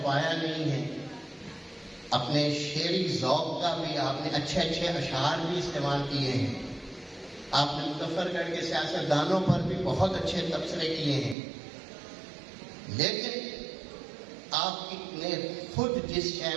नहीं है। अपने शेरी ज़ौक़ का भी आपने अच्छे अच्छे अशार भी इस्तेमाल किए हैं। आपने मुज़फ्फरगढ़ के सियासतदानों पर भी बहुत अच्छे तबसरे किए हैं, लेकिन आपने खुद जिस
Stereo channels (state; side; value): drops out; left; at 11.4 s